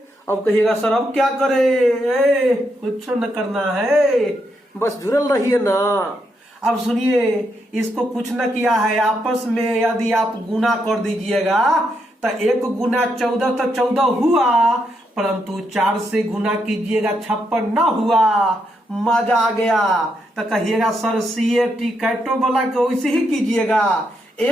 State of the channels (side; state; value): both; normal; correlation 0.80